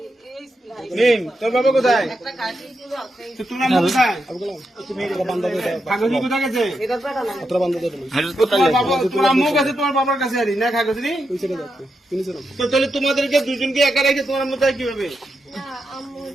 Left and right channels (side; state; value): both; normal; correlation 0.85